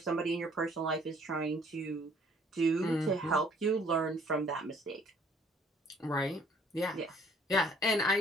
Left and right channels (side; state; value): both; normal; correlation 0.60